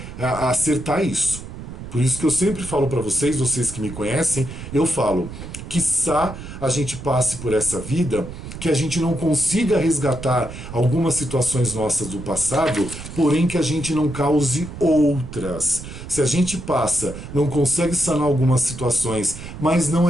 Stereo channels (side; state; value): right; noise; rumble, 11 dB below the sound